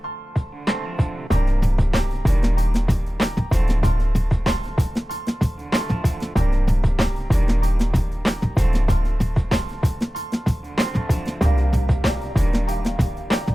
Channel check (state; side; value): normal; both; correlation 0.96